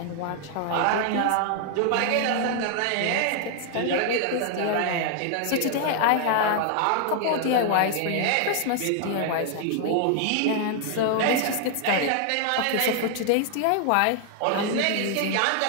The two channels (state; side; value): different; both; correlation 0.00